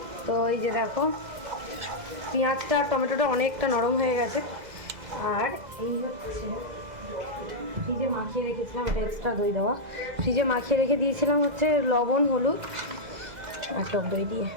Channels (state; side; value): late; left; 2.0 ms